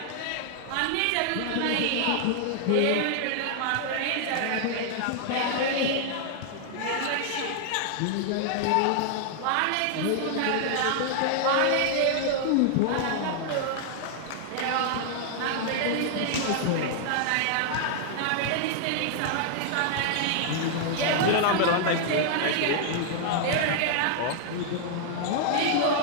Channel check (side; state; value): both; different; correlation 0.00